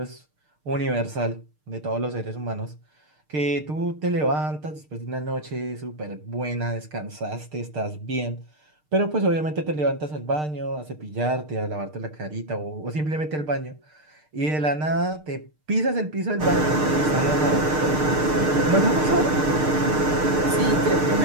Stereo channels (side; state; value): left; late; 6.6 ms